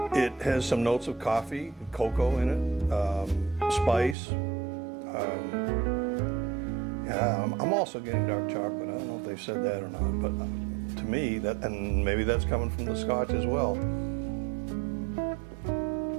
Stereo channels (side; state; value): left; drops out; at 4.2 s